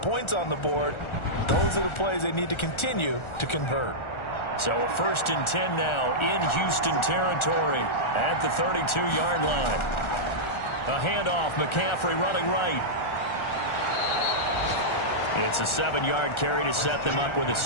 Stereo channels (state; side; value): late; right; 1.4 ms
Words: points on the board, those are the plays they need to continue to convert. So a 1st and 10 now in Houston territory at the 32-yard line. A handoff, McCaffrey running right. It's a 7-yard carry to set them up with a